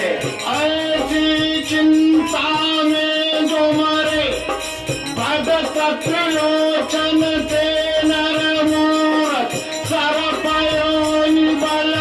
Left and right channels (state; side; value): identical; both; correlation 1.00